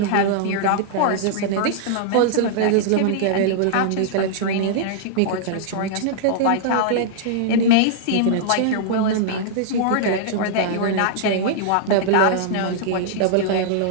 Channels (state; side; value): different; both; correlation -0.01